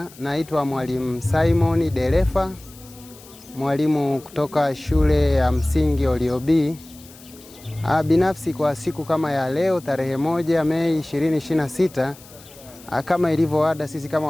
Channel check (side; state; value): left; noise; hiss, 22 dB below the sound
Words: Naitwa Mwalimu Simon Delefa, mwalimu kutoka shule ya msingi Oliobi. Binafsi kwa siku kama ya leo tarehe 1 Mei 2026, kama ilivyo ada, sisi kama